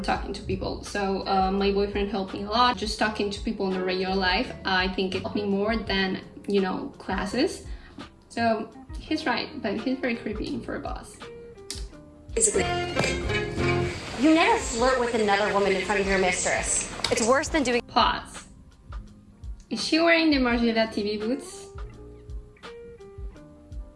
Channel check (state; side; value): identical; both; correlation 1.00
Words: talking to people. So my boyfriend helped me a lot. Just talking to people in the regular life, I think it helped me more than, you know, classes. So he's right, but he's very creepy for a boss. You never flirt with another woman in front of your mistress. It's worse than doing. Pause. Is she wearing the Margiela TV boots?